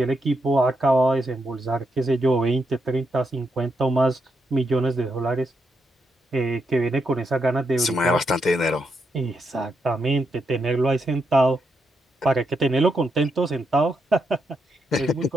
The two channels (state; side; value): normal; both; correlation 0.81